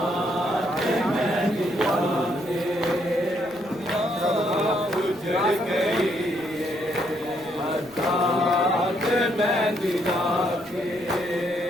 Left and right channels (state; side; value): noise; left; rumble, 27 dB below the sound